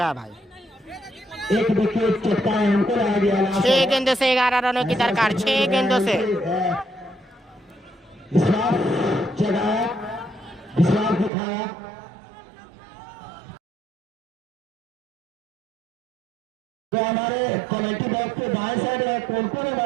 है भाई। 1 विकेट चटकाए हमको रह गया। 6 गेंदों से 11 रनों की दरकार, 6 गेंदों से। विश्वास जगाया, विश्वास दिखाया। तो हमारे कमेटी बॉक्स के दाएं साइड है, कौन है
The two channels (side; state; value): left; drops out; at 11.3 s